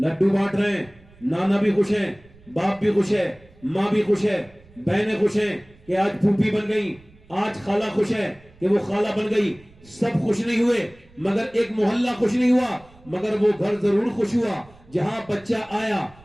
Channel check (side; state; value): right; noise; rumble, 26 dB below the sound